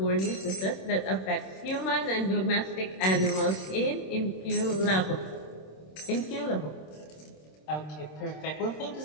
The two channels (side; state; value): right; late; 26 ms